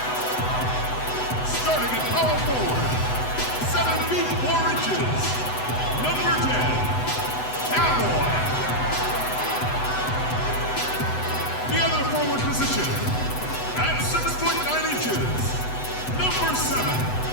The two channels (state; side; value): late; right; 8.0 ms